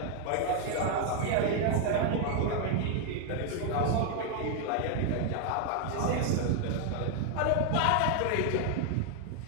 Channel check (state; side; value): different; both; correlation 0.00